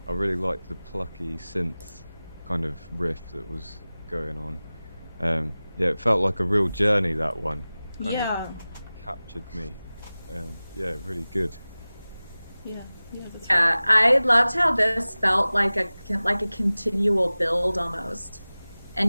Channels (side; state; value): both; inverted; correlation -0.98